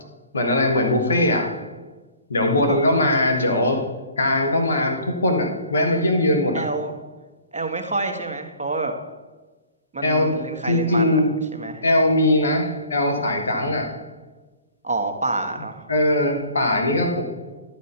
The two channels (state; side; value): inverted; both; correlation -0.53